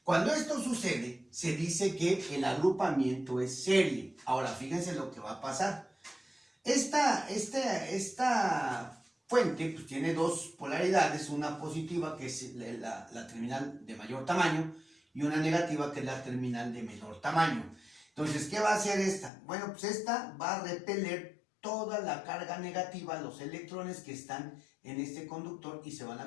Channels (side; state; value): right; drops out; at 19.3 s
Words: Cuando esto sucede, se dice que el agrupamiento es serie. Ahora, fíjense lo que va a pasar. Esta fuente pues, tiene 2 polaridades, una positiva que es la terminal de mayor tamaño y una negativa que es la terminal de menor tamaño. Entonces, ¿qué va a hacer esta? Bueno, pues esta va a repeler toda la carga negativa, los electrones que están en este conductor y se van a